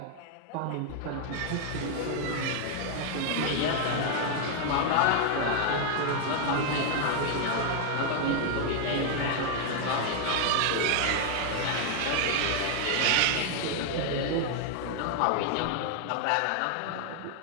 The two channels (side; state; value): both; different; correlation 0.00